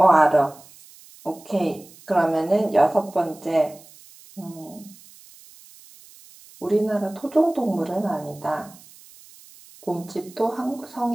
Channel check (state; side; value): noise; right; hiss, 23 dB below the sound